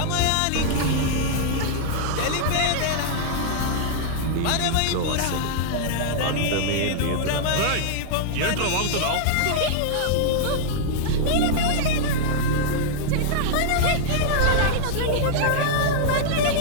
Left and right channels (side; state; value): both; different; correlation -0.01